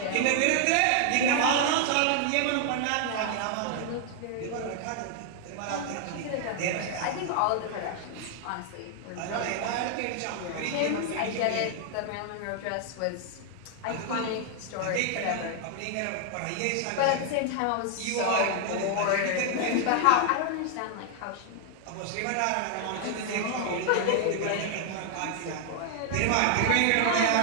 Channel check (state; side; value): different; both; correlation 0.00